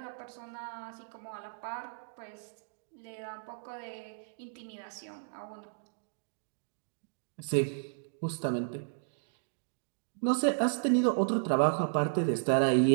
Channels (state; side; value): silent; left; digital silence